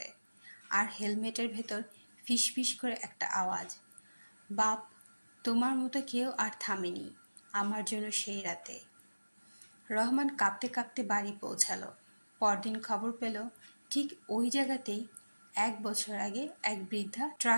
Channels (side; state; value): both; inverted; correlation -1.00